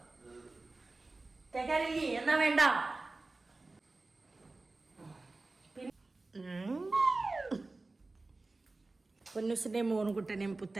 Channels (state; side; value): quieter; left; 3.3 dB